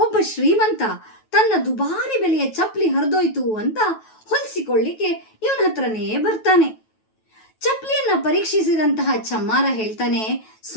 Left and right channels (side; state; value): right; late; 9.2 ms